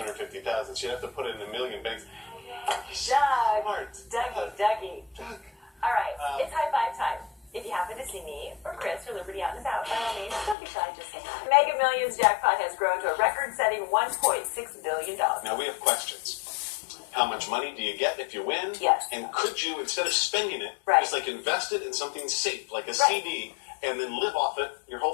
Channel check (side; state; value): right; drops out; at 10.6 s